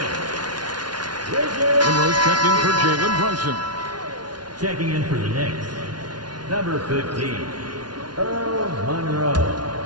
Monroe's checked in for Jalen Brunson. Checking in for the Knicks. Number 15, Earl Monroe.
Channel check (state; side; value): late; left; 0.70 ms